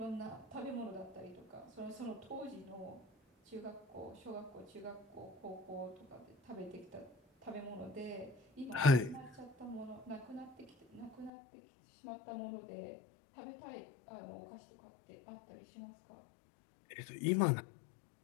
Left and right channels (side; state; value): right; drops out; at 11.3 s